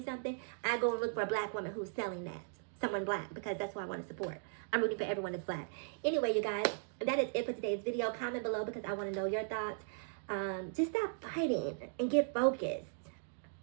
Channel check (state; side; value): silent; left; digital silence